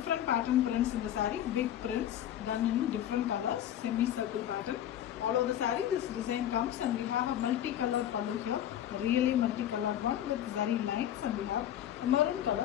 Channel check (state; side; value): quieter; right; 11.2 dB